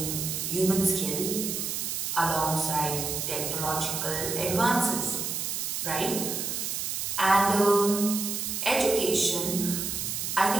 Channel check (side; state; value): right; noise; hiss, 2 dB below the sound